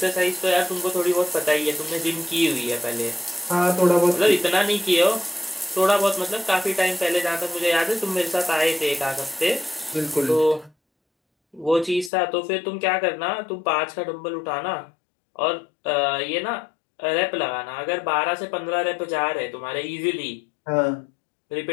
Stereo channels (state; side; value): drops out; right; at 12.1 s